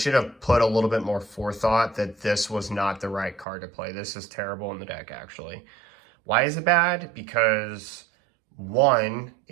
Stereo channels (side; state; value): left; drops out; at 3.5 s